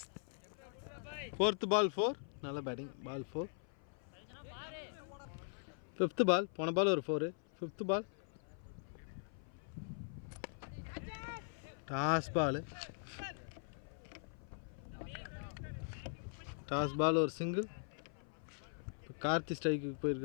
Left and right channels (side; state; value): right; silent; 50 dB below the other